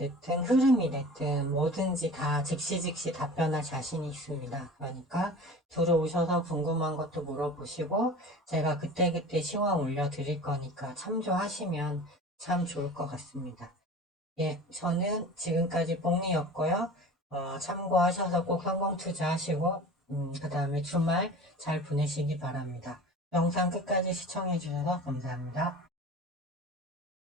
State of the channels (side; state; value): both; normal; correlation 0.38